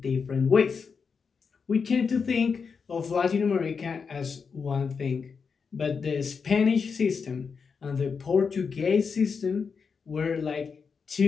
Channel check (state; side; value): quieter; right; 5.6 dB